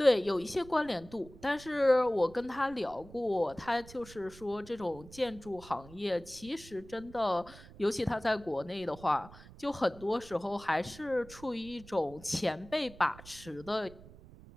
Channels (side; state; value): right; noise; rumble, 19 dB below the sound